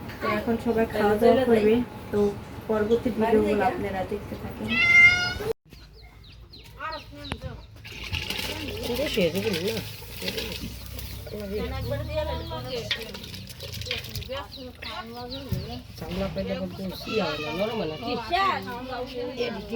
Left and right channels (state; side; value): identical; both; correlation 1.00